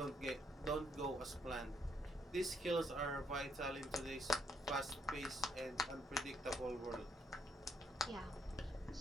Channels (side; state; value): both; normal; correlation 0.72